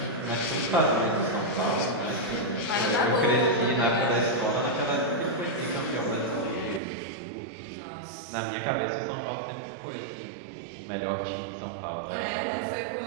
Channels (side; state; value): left; drops out; at 6.8 s